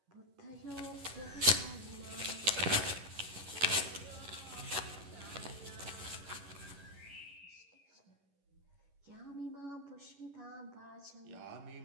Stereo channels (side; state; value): left; late; 11 ms